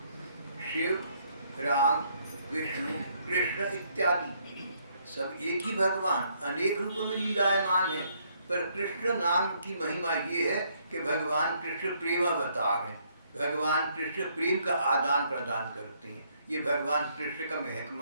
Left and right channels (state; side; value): inverted; both; correlation -0.70